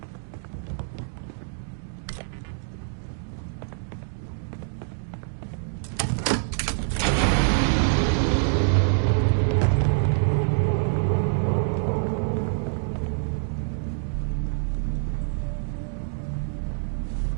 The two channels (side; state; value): left; silent; digital silence